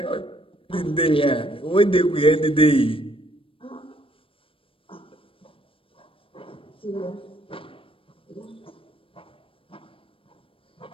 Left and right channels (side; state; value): right; late; 0.26 ms